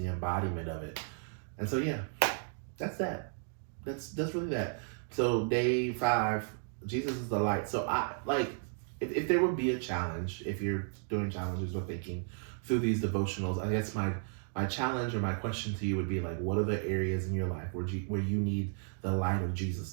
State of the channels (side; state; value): left; silent; 55 dB below the other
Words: embodiment of it. And so yeah, that's that. That's really that. So day 5, Jesus is the light. So I like, if there would be a challenge, if you're doing challenges or thinking through these devotionals, I guess my challenge or my question to you would be like, what are the areas in your life where you need the light of Jesus